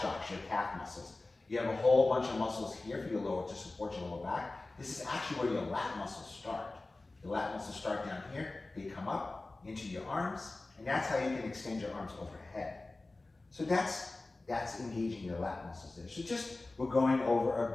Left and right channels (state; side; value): quieter; right; 3.1 dB